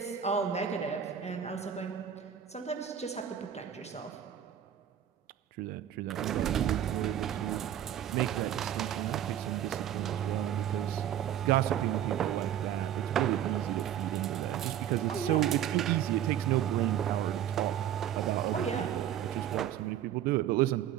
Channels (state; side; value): quieter; left; 10.3 dB